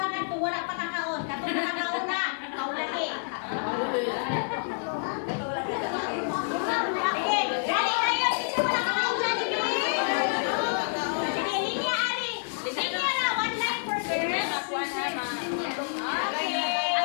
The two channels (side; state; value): right; silent; digital silence